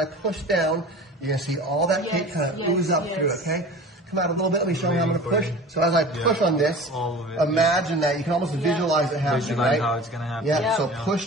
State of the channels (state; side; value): normal; both; correlation 0.39